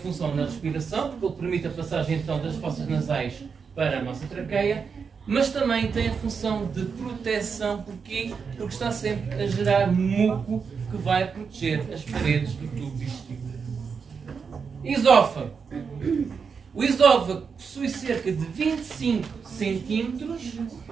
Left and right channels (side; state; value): left; quieter; 5.8 dB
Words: na respiração, porque ele permite a passagem então das fossas nasais para a nossa traqueia, mas também tem a função de proteção, porque está sempre a gerar muco que vai proteger as paredes do tubo digestivo. Esófago. O esófago possui cerca de 25 centímetros